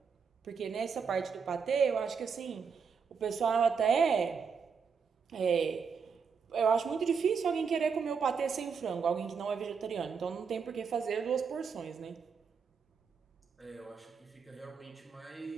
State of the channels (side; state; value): left; quieter; 6.0 dB